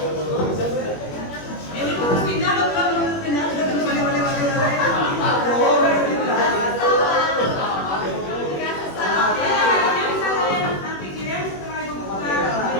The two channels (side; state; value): right; late; 21 ms